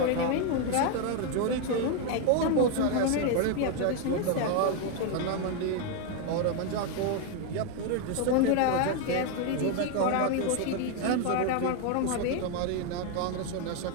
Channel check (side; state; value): both; different; correlation 0.01